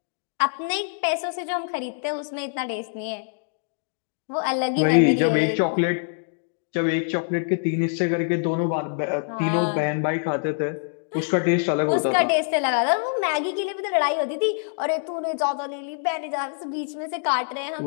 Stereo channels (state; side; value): silent; right; digital silence